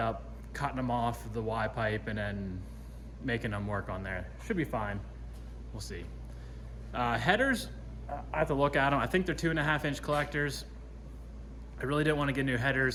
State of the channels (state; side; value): identical; both; correlation 1.00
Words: cutting them off the Y pipe and then making them work on there. Should be fine, we'll see. Headers, I have to look at them. I think they're 2.5-inch collectors. I really didn't want to get new